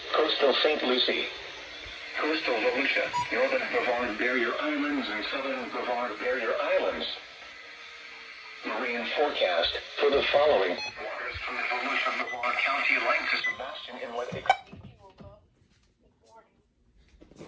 coastal St. Lucie, coastal Volusia, northern Brevard Barrier Islands, and southern Brevard Barrier Islands. Marine forecast for the following. Waters from the Volusia Brevard County length to Sebastian Inlet.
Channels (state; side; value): identical; both; correlation 1.00